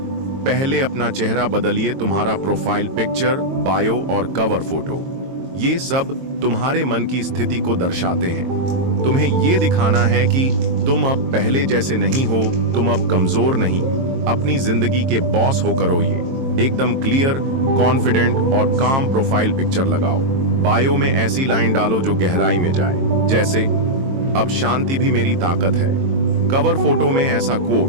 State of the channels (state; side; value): late; left; 22 ms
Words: पहले अपना चेहरा बदलिए। तुम्हारा प्रोफाइल पिक्चर, बायो और कवर फोटो, ये सब तुम्हारे मन की स्थिति को दर्शाते हैं। तुम्हें ये दिखाना है कि तुम अब पहले जैसे नहीं हो, तुम अब कमजोर नहीं, अपनी जिंदगी के बॉस हो करो। ये एकदम क्लियर, कॉन्फिडेंट और काम प्रोफाइल पिक्चर लगाओ। बायो में ऐसी लाइन डालो जो गहराई में जाए, जैसे अब शांति भी मेरी ताकत है। कवर फोटो में ऐसा